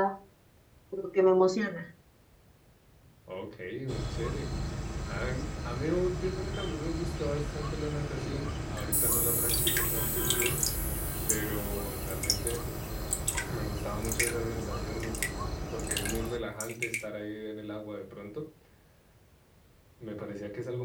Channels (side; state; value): both; identical; correlation 1.00